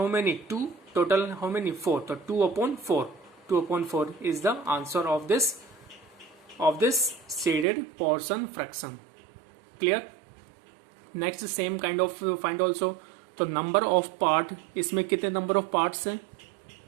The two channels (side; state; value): left; drops out; at 7.7 s